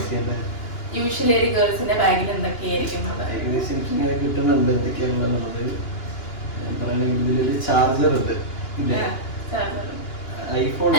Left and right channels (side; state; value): right; late; 2.9 ms